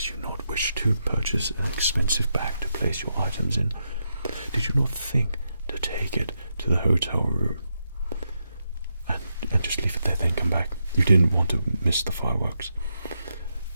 you not wish to purchase an expensive bag to place your items in? Did you not think to take it to the hotel room and just leave it there, then come back? You didn't want to miss the fireworks.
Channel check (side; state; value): both; inverted; correlation -0.84